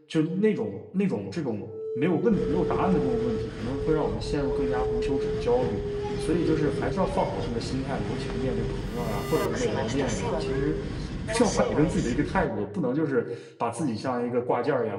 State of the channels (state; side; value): identical; both; correlation 1.00